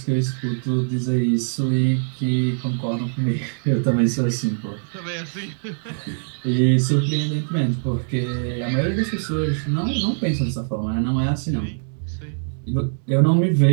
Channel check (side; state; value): left; silent; digital silence